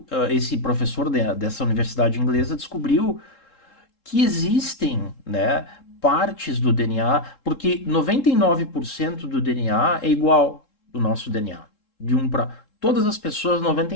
esse professor dessa universidade inglesa descobriu que existem, né, partes do DNA, porque 99% do DNA é igual do nosso DNA. De um para todas as pessoas,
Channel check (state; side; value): late; right; 3.7 ms